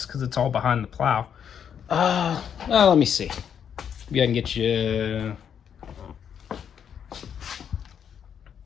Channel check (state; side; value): quieter; right; 8.1 dB